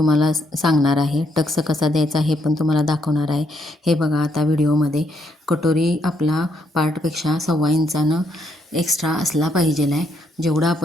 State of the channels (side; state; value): both; normal; correlation 0.75